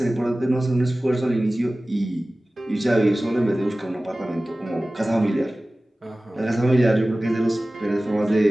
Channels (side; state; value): both; normal; correlation 0.97